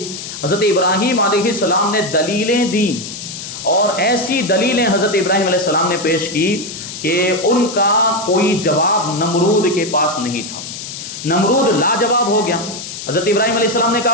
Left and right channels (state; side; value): noise; left; hiss, 9 dB below the sound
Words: حضرت ابراہیم علیہ السلام نے دلیلیں دیں، اور ایسی دلیلیں حضرت ابراہیم علیہ السلام نے پیش کی کہ ان کا کوئی جواب نمرود کے پاس نہیں تھا۔ نمرود لاجواب ہو گیا۔ حضرت ابراہیم علیہ السلام نے